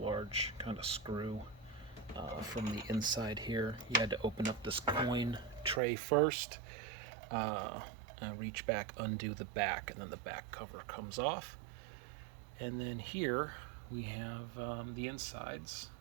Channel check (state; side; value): drops out; left; at 5.8 s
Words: kind of screw from the inside here. You had to open up this coin tray first, and reach back, undo the back, and then the back cover comes off. And then here we have the insides.